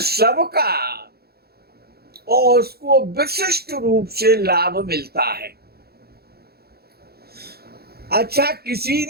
का और उसको विशिष्ट रूप से लाभ मिलता है। अच्छा, किसी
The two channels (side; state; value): left; late; 0.46 ms